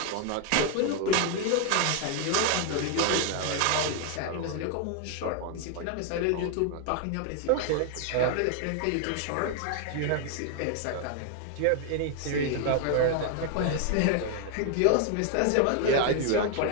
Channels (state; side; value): different; both; correlation 0.00